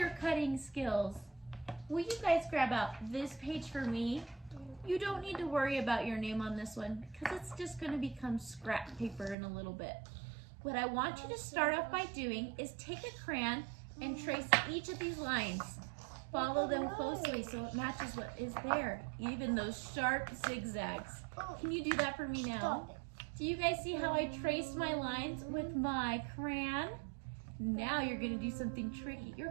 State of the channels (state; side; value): drops out; left; at 9.3 s